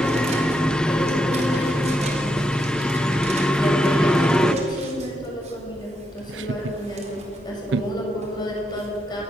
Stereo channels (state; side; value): normal; both; correlation 0.82